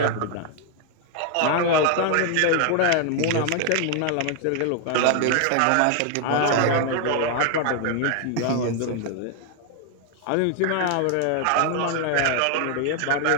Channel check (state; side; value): different; both; correlation 0.01